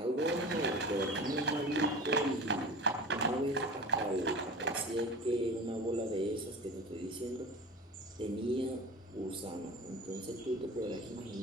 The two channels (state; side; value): normal; both; correlation 0.34